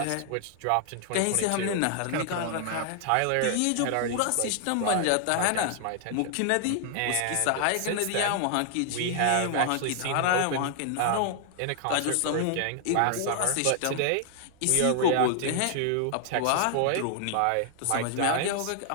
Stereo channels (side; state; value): both; different; correlation 0.00